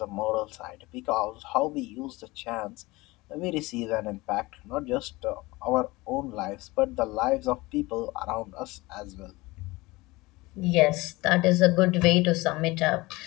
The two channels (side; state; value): right; quieter; 21.6 dB